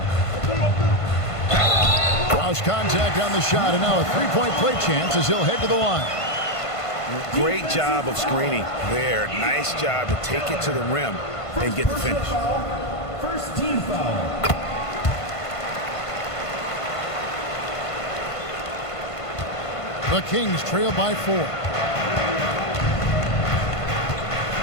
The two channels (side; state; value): right; late; 1.5 ms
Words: Cross contact on the shot, and now a three-point play chance as he'll head to the line. Great job of screening there. Nice job to take it to the rim and get the finish. First team foul. The Kings trail by 4.